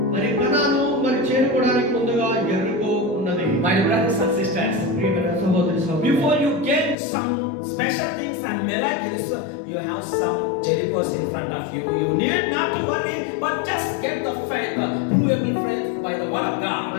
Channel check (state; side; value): drops out; right; at 7.0 s